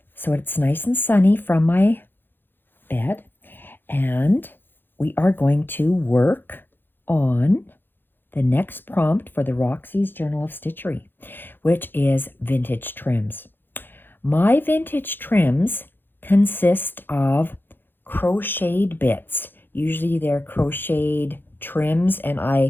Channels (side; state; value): right; late; 0.098 ms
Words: So it's nice and sunny from my bed and we are going to work on the next prompt for the Roxys Journal of Stitchery, which is vintage trims. My vintage trims consist of crocheted bits. Usually they're crocheted trims and